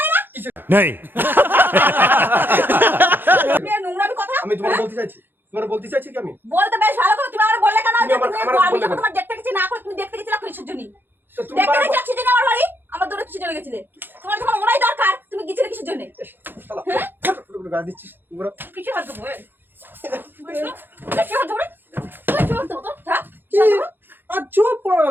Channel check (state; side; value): late; left; 0.098 ms